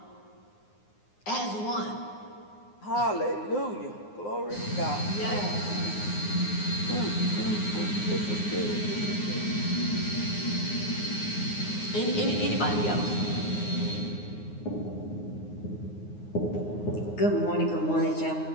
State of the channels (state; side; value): late; right; 9.6 ms